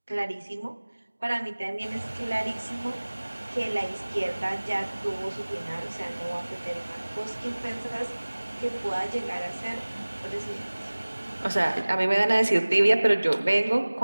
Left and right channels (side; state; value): both; inverted; correlation -1.00